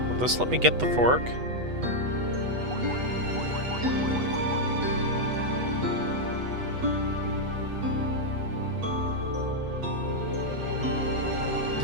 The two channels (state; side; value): late; left; 8.1 ms